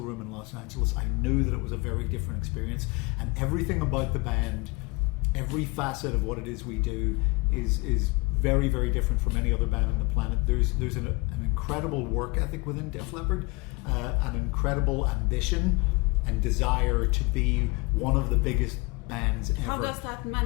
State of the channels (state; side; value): quieter; right; 26.1 dB